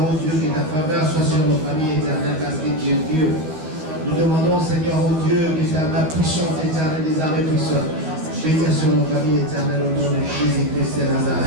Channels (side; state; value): left; late; 13 ms